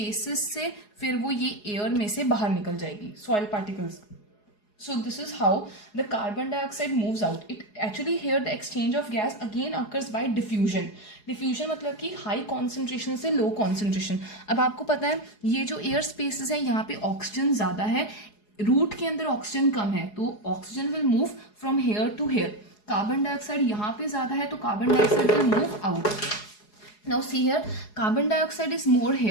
से फिर वो ये एयर में से बाहर निकल जाएगी, soil particles. So this is how the carbon dioxide moves out. It actually here the exchange of gas again occurs by diffusion. Diffusion मतलब कि high concentration से low concentration. अब आपको पता है ये जो air spaces है यहाँ पे ऑक्सीजन ज़्यादा है, रूट के अंदर ऑक्सीजन कम है, तो oxygen will move from here to here. Carbon dioxide यहाँ पे ज़्यादा है तो carbon dioxide will move out. Now see here, carbon dioxide is more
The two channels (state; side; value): late; right; 4.8 ms